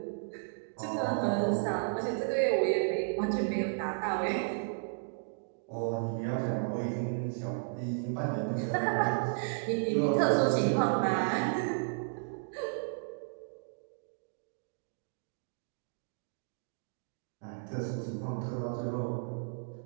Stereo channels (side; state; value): left; silent; digital silence